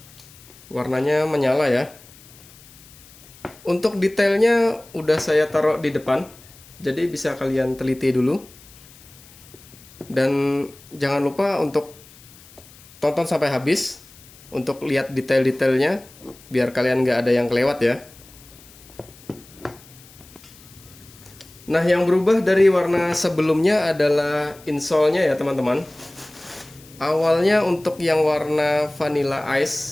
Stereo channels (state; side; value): noise; left; hiss, 23 dB below the sound